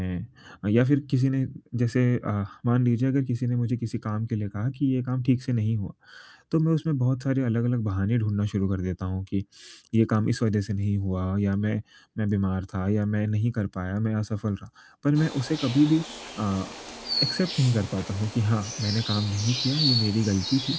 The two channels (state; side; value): identical; both; correlation 1.00